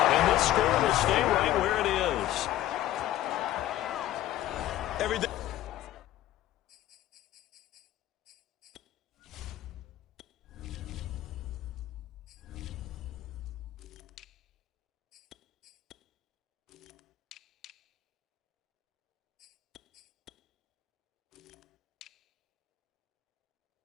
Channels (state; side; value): quieter; right; 13.8 dB